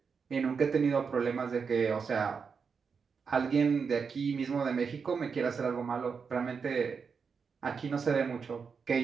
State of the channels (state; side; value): quieter; left; 5.7 dB